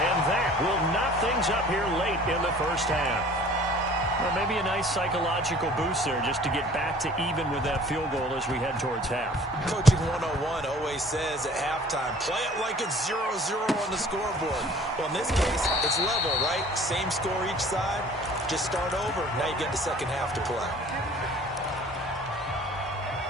that will knock things up here late in the first half. Well, maybe a nice psychological boost there just to get back to even with that field goal as we head towards half. Coaching 101 always says at halftime, play it like it's 0-0 on the scoreboard. Well, in this case, it's level, right? Same score each side. Just start over. Now you get the second half to play.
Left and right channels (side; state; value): both; normal; correlation 0.50